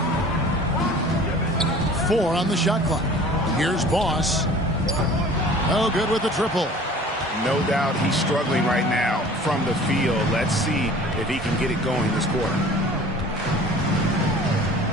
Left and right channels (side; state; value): both; normal; correlation 0.46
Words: 4 on the shot clock. Here's Boss. Oh, good with the triple. No doubt he's struggling right now from the field. Let's see if he can get it going this quarter.